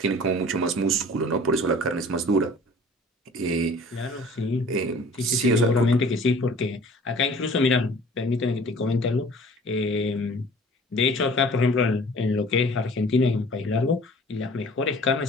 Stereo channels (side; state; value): both; normal; correlation 0.48